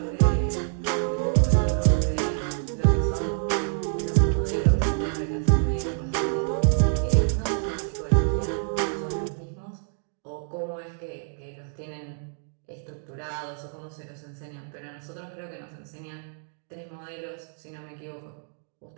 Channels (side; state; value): left; silent; digital silence